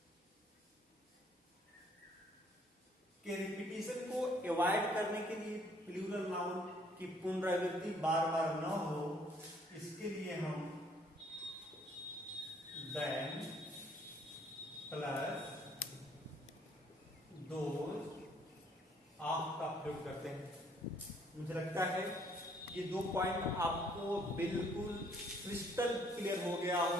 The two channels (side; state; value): both; normal; correlation 0.63